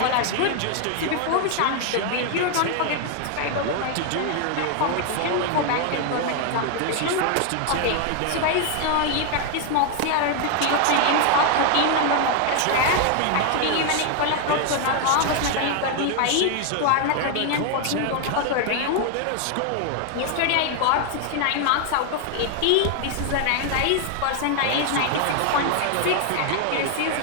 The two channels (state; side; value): different; both; correlation 0.00